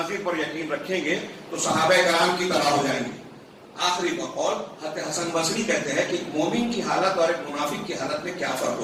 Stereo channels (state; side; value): identical; both; correlation 1.00